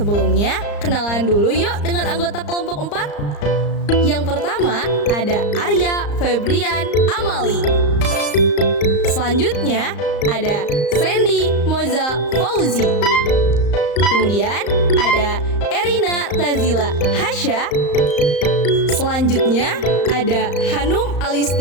kenalan dulu yuk dengan anggota kelompok 4. Yang pertama ada Arya Febrian Amali. Selanjutnya ada Sandy Moza Fauzi. Kemudian ada Erina Tazila Hasya. Selanjutnya ada Hanum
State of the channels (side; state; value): right; late; 34 ms